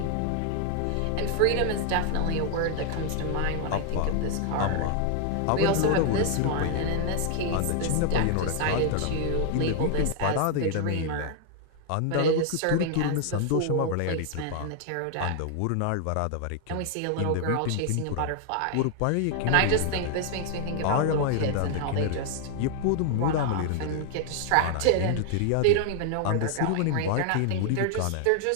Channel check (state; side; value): different; both; correlation 0.00